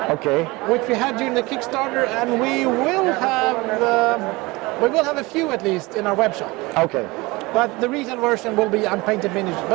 Okay. Which we had during the Kickstarter, and we will have a few at least in our web shop. Okay. But the retail version will be unpainted miniatures,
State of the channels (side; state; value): left; quieter; 22.9 dB